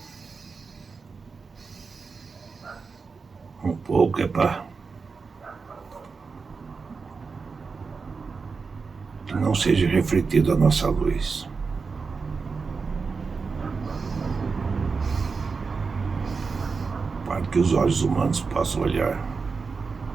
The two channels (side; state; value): left; quieter; 4.8 dB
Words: Um pouco é para que não seja refletida a nossa luz. Para que os olhos humanos possam olhar.